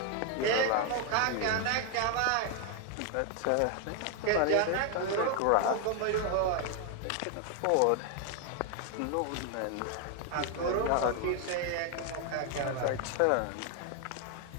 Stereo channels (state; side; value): different; both; correlation 0.00